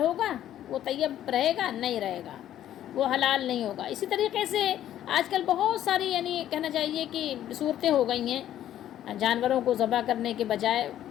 وہ طیب رہے گا؟ نہیں رہے گا، وہ حلال نہیں ہوگا۔ اسی طریقے سے آج کل بہت ساری یعنی کہنا چاہیے کہ صورتیں ہو گئی ہیں، جانوروں کو ذبح کرنے کے بجائے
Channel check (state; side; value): quieter; right; 11.8 dB